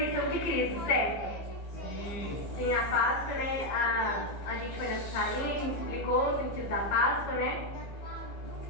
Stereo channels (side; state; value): right; late; 15 ms